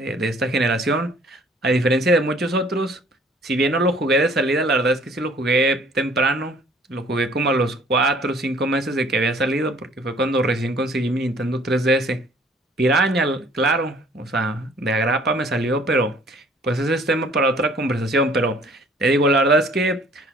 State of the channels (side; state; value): both; normal; correlation 0.56